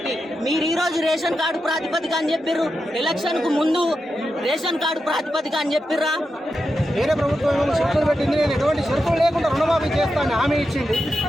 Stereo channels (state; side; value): normal; both; correlation 0.88